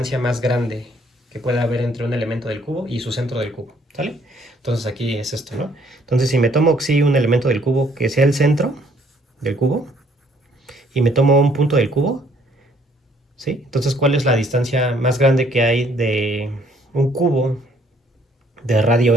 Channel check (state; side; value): normal; both; correlation 0.64